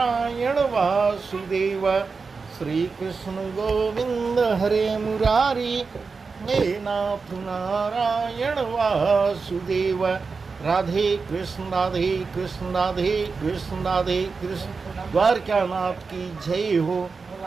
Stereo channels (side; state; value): left; quieter; 4.7 dB